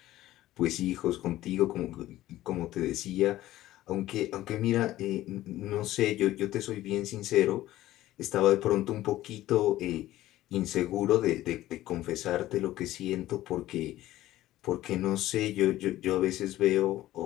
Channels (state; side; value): quieter; right; 15.1 dB